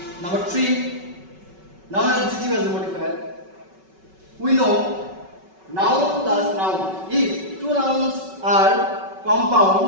number 3. Noun adjective as a modifier. We know noun plus noun. If two nouns are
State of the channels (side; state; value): left; late; 5.3 ms